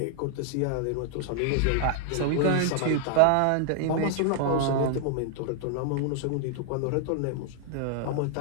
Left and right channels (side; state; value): both; different; correlation 0.00